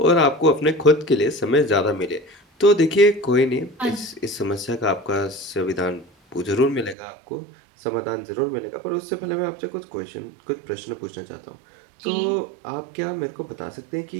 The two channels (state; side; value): drops out; left; at 7.0 s